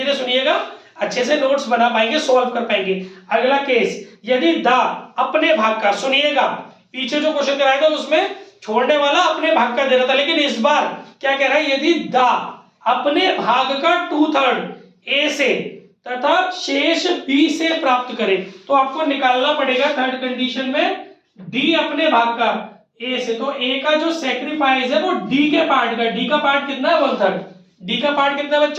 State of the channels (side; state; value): both; identical; correlation 1.00